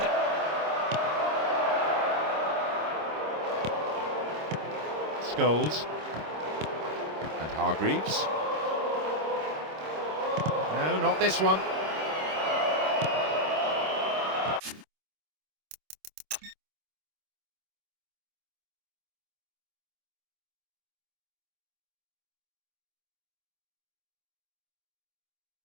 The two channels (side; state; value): left; late; 26 ms